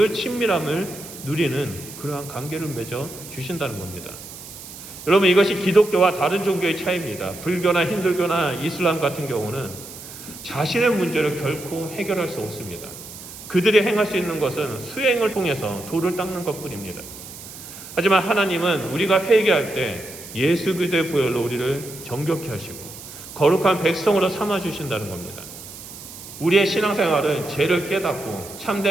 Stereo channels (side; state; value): right; noise; hiss, 14 dB below the sound